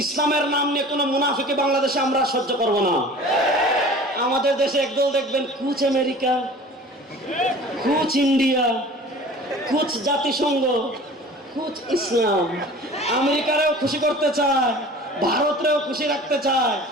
ইসলামের নাম নিয়ে কোনো মুনাফিকি বাংলাদেশে আমরা সহ্য করব না। আমাদের দেশে একদল দেখবেন কুচ আমেরিকা, কুচ ইন্ডিয়া, কুচ জাতিসংঘ, কুচ ইসলাম। আমেরিকারেও খুশি করতে চায়, ভারতরেও খুশি রাখতে চায়,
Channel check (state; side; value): normal; both; correlation 0.43